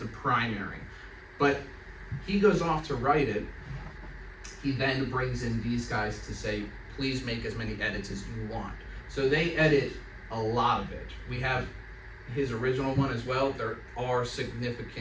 primary. But he goes off to write it. He then brings in these guys to say, please make as many edits as you want. So they edit a lot of it. We have his original one as well. There are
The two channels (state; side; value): identical; both; correlation 1.00